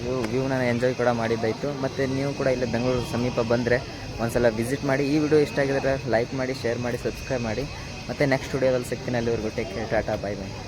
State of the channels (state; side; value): identical; both; correlation 1.00